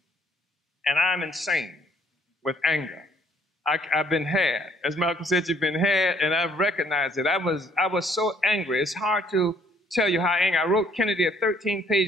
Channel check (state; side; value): normal; both; correlation 0.63